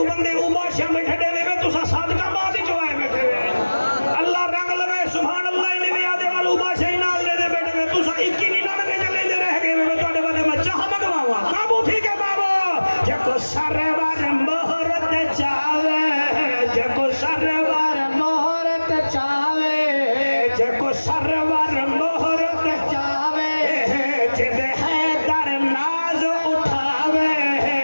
بندے اوباشیاں بیٹھے دے دے تو سا صادقہ بات ہی جو آئے بیٹھے ہوئے اللہ رنگ لگے سبحان اللہ انہیں بھی آدھے والا اوباشیاں ہی نال دے دے بیٹھے ہوئے تو سا اکی نہیں نہ لگے چلے دے رہ گئے میں تو آدھے بندے میں چاہ مگواوا کابو ٹھیک ہے بابو جے کو سرور مہرت چاہے جے کو سرور مہرت چاہے جے کو سرور مہرت چاہے جے حیدر ناز اٹھاوے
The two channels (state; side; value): inverted; both; correlation -1.00